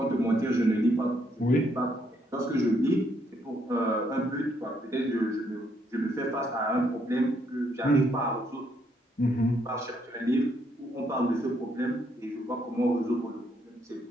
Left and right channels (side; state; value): both; normal; correlation 0.73